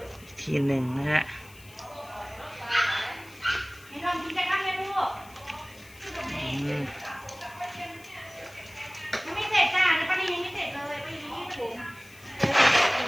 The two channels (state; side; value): noise; left; hiss, 23 dB below the sound